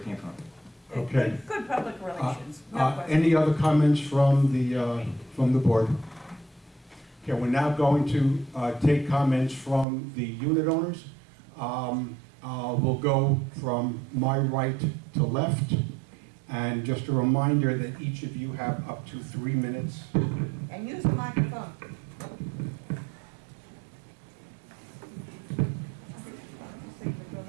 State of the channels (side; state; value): left; drops out; at 9.9 s